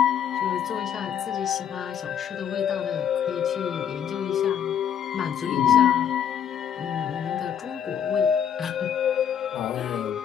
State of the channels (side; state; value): right; quieter; 8.8 dB